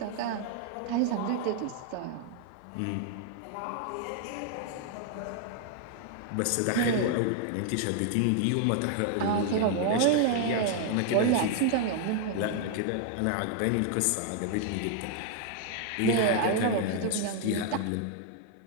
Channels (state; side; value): different; both; correlation 0.00